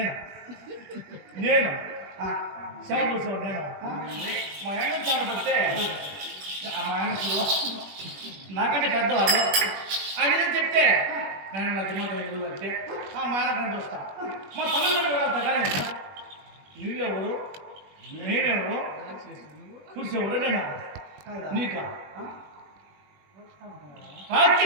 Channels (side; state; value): left; late; 21 ms